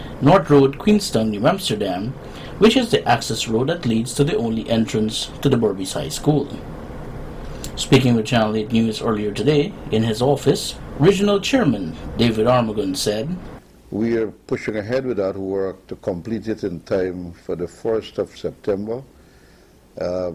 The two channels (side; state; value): both; identical; correlation 1.00